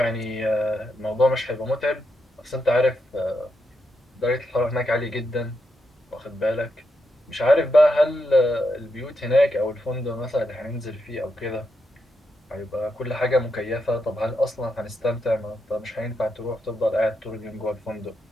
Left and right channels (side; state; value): both; normal; correlation 0.83